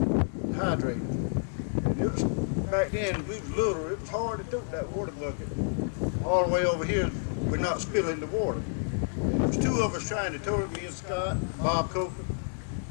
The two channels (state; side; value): silent; right; digital silence